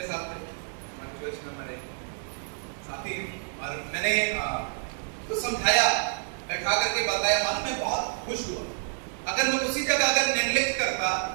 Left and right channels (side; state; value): left; silent; 59 dB below the other